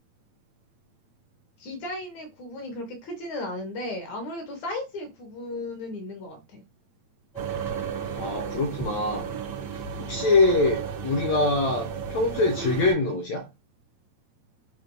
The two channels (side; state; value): right; late; 8.8 ms